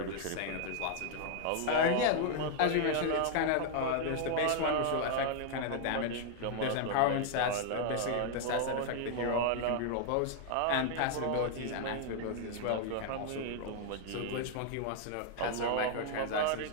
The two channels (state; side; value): different; both; correlation 0.00